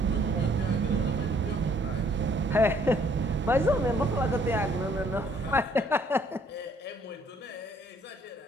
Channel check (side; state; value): both; normal; correlation 0.64